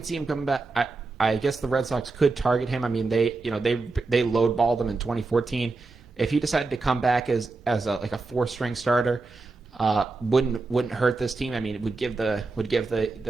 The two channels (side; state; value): left; quieter; 3.7 dB